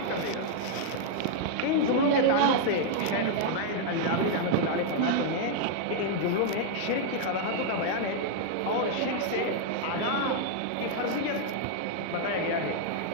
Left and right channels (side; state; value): both; different; correlation -0.01